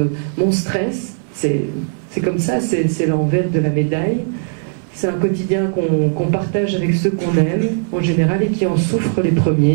mon stress, c'est comme ça, c'est l'envers de la médaille. C'est un quotidien qu'on partage avec ceux qu'on aime, en général, et qui en souffrent les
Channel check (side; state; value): left; silent; digital silence